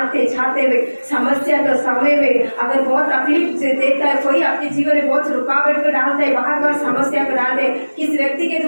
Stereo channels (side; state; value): both; inverted; correlation -1.00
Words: छाते में समस्या के समय में अगर बहुत तकलीफ से देता है कोई, आपके जीवन में बहुत रुकावट को डालता है, बार बार समस्या को डालते, किस व्यक्ति के